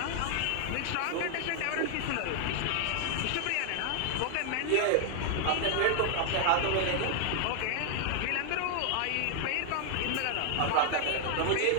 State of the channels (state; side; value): different; both; correlation 0.00